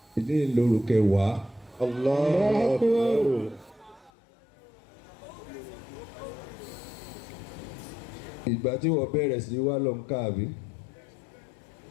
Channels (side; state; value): right; drops out; at 4.1 s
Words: ìdí ìloro kẹwàá, Allah. Ìgbà tí wọ́n bẹ̀rẹ̀ sí wá lọ ń káàbí.